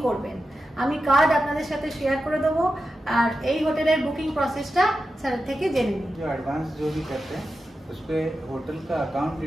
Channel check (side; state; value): both; normal; correlation 0.91